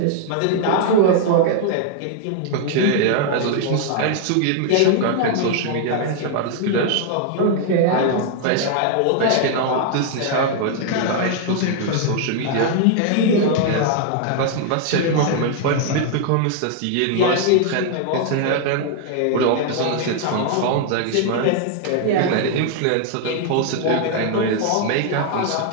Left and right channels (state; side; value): different; both; correlation 0.00